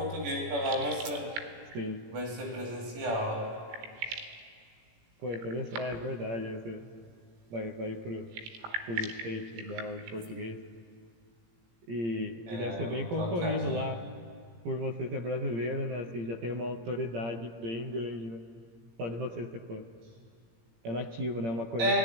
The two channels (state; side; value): late; left; 17 ms